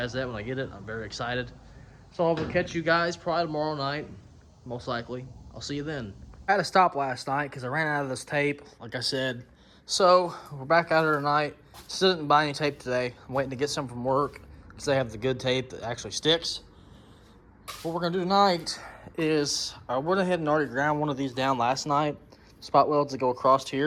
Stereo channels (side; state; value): both; identical; correlation 1.00